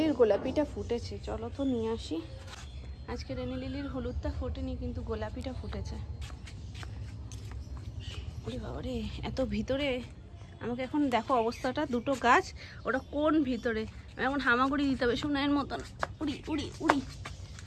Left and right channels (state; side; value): identical; both; correlation 1.00